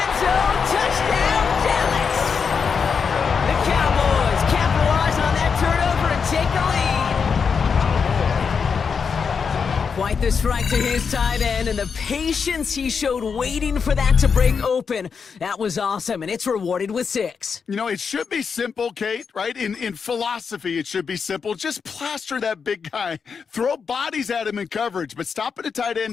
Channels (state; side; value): quieter; right; 6.0 dB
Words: zone. Touchdown, Dallas. The Cowboys capitalize on that turnover and take the lead. Quite the strike to his tight end, and the patience he showed waiting for that to break open. That was awesome, and it's rewarded with 6. You know, it should be simple, Kate, right? In philosophy, it should be simple. Just plaster that big guy. Throw bodies at him in coverage, but stopping a tight end